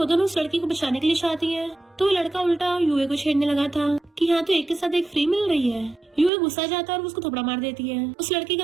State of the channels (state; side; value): drops out; left; at 6.3 s